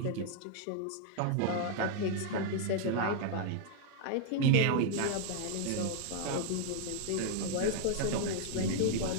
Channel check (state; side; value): different; both; correlation 0.00